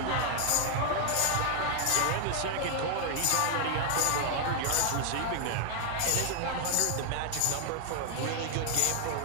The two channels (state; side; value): different; both; correlation 0.00